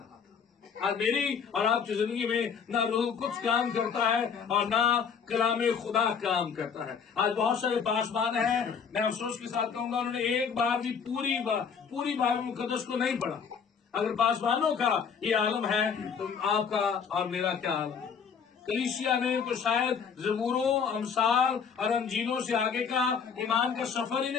आज मेरी और आपकी जिंदगी में ना रूह कुद्स काम करता है और ना कलाम खुदा काम करता है। आज बहुत सारे पासबान हैं, मैं अफसोस के साथ कहूंगा, उन्होंने एक बार भी पूरी बाइबल मुकद्दस को नहीं पढ़ा। अगर पासबानों का ये आलम है तो आपका और मेरा क्या आलम? कलीसिया ने तो शायद ज़बूरों, अमसाल और अंजीलों से आगे का ईमान का सफर ही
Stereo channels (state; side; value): quieter; right; 6.6 dB